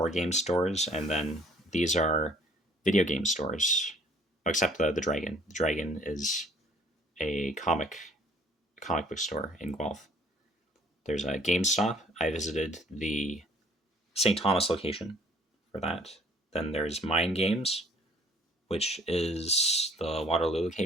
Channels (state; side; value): normal; both; correlation 0.57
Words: game stores, and then these are video game stores, except the Dragon. The Dragon is a comic book store in Guelph. There's a GameStop. I visited the St. Thomas location for that. Then there's Mind Games, which is the Waterloo